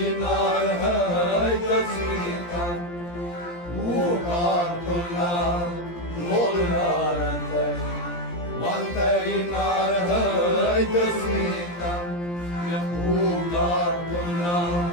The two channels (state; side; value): late; right; 17 ms